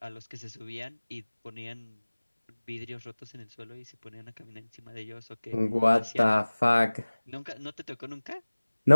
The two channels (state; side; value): inverted; both; correlation -1.00